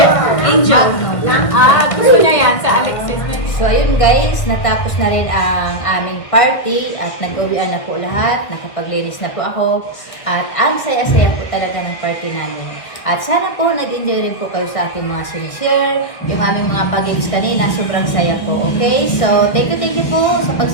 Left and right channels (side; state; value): right; late; 1.7 ms